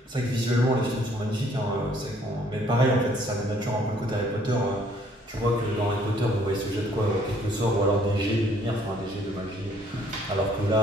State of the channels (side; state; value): both; normal; correlation 0.62